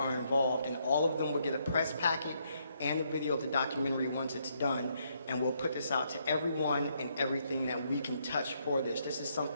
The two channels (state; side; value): inverted; both; correlation -0.74